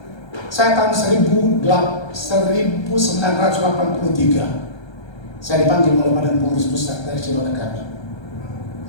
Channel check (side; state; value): right; late; 1.3 ms